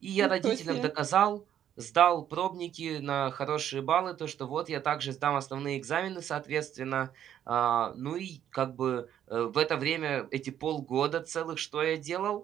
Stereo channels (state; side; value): quieter; left; 10.3 dB